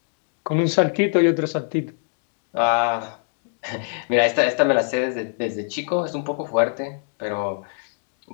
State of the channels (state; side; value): silent; right; digital silence